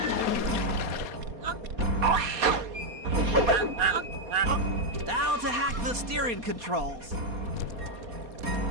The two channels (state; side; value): late; left; 4.2 ms